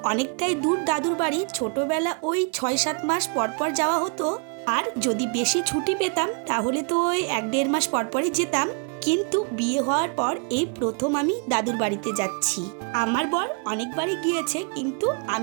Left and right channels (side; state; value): left; quieter; 37.0 dB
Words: অনেকটাই দূর দাদুর বাড়ি, ছোটবেলা ওই ৬-৭ মাস পর পর যাওয়া হতো, আর যদি বেশি ছুটি পেতাম তাহলে তো ওই ১-১.৫ মাস পরপরই যেতাম। কিন্তু বিয়ে হওয়ার পর এই প্রথম আমি দাদুর বাড়িতে যাচ্ছি। আমার বর অনেকবারই গিয়েছে, কিন্তু